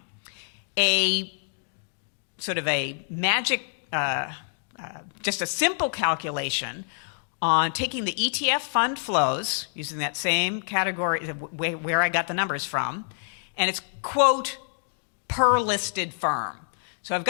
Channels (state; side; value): silent; right; digital silence